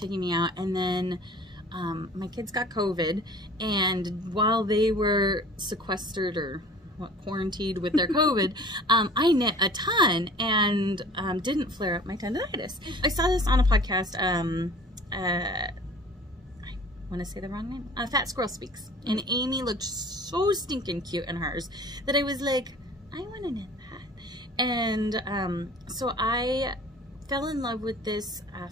and then my kids got COVID, and while they were sequestered or quarantined with their COVID, I knit a ton and didn't flare up my tendonitis. I saw this on a podcast, I want to say the wrong name, Fat Squirrel Speaks, and Amy looked so stinking cute in hers that I was like, I want to knit that. And so I fell in love with this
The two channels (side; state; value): both; normal; correlation 0.46